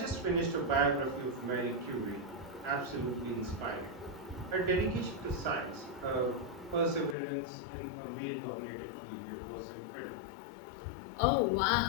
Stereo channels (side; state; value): right; drops out; at 7.2 s